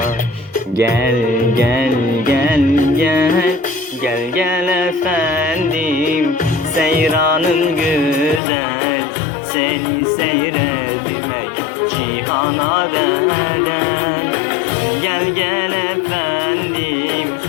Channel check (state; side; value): drops out; right; at 8.4 s